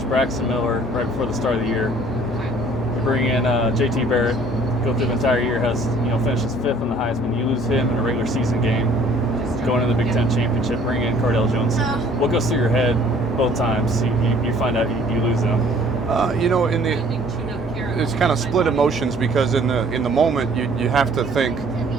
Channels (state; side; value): normal; both; correlation 0.56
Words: Braxton Miller right before the start of the year. You bring in JT Barrett, go through the entire year, finishes 5th in the Heisman. You lose him in a regular season game, going into the Big Ten Championship, bring in Cardell Jones. What goes through your head both times you find out you lose them? It's kind of split emotions, because in the moment you have to think,